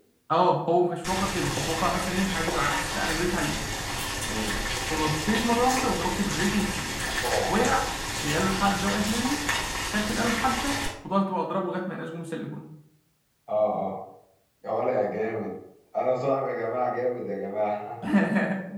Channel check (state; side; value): identical; both; correlation 1.00